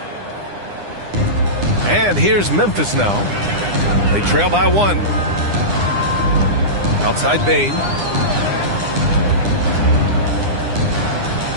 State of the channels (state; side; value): late; left; 9.9 ms